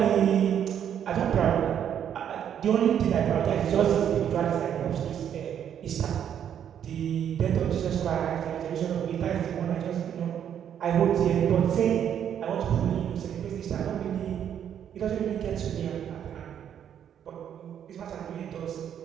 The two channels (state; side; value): quieter; left; 9.2 dB